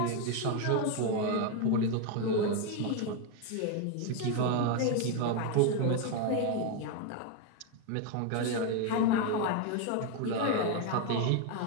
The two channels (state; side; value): different; both; correlation 0.01